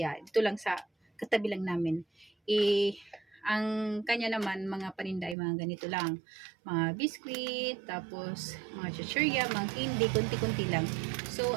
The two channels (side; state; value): left; drops out; at 5.4 s